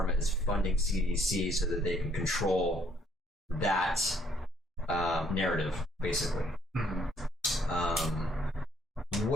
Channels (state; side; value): normal; both; correlation 0.66